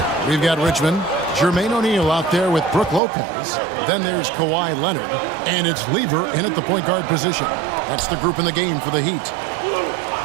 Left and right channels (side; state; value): left; drops out; at 3.0 s